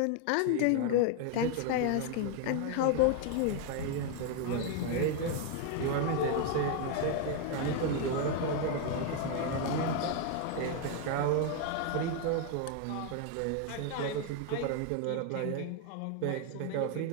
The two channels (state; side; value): different; both; correlation 0.01